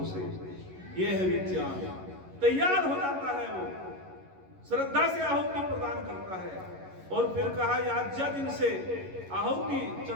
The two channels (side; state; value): left; late; 11 ms